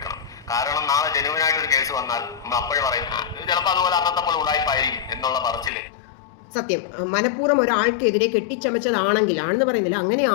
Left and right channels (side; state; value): right; drops out; at 5.7 s